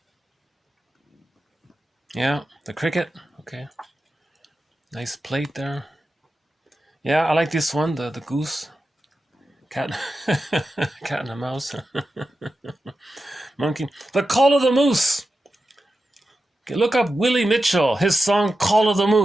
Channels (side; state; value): both; normal; correlation 0.91